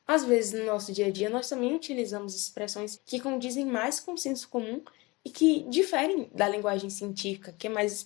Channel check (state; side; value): quieter; right; 23.9 dB